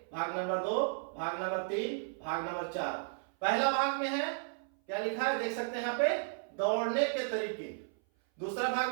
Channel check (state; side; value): silent; left; 55 dB below the other